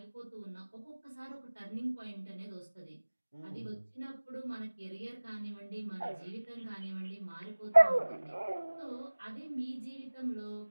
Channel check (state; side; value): inverted; both; correlation -1.00